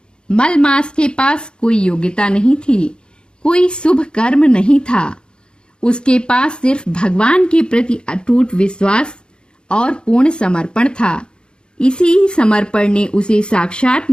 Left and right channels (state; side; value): late; right; 0.051 ms